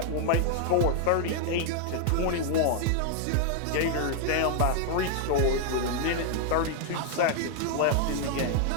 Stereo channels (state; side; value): different; both; correlation 0.00